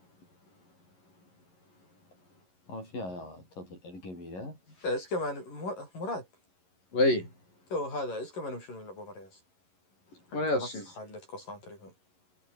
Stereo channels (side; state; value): right; late; 11 ms